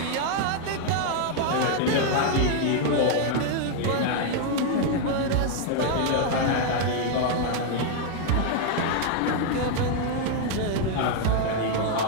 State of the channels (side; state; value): both; different; correlation 0.00